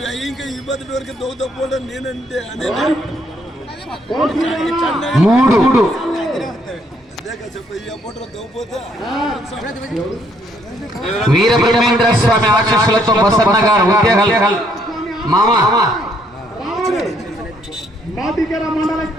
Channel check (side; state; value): both; normal; correlation 0.69